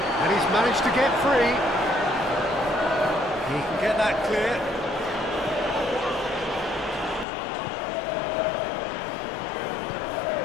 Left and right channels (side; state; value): right; drops out; at 7.2 s